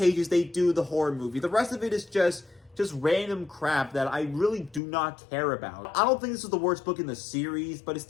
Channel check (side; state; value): right; drops out; at 4.8 s